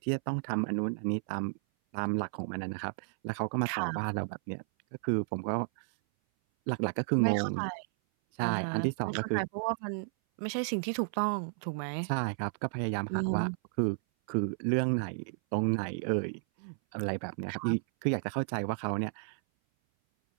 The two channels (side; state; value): left; silent; 56 dB below the other